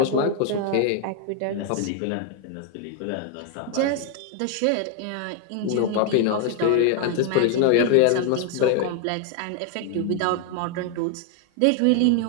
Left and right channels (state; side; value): different; both; correlation 0.00